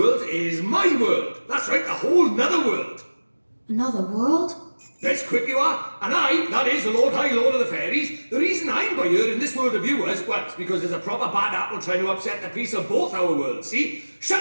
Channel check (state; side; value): inverted; both; correlation -1.00